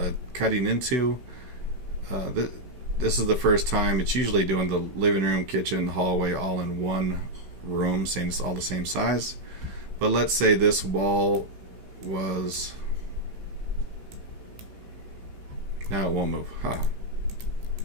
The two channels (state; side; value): late; left; 16 ms